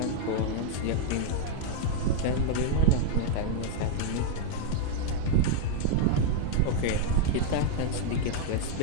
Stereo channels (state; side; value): different; both; correlation 0.00